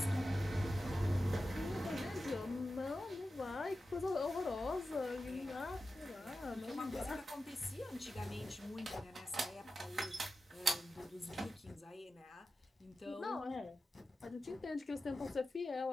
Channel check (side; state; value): both; normal; correlation 0.92